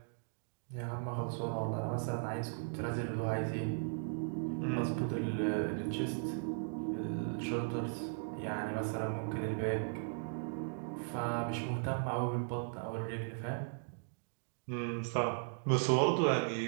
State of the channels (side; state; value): left; silent; digital silence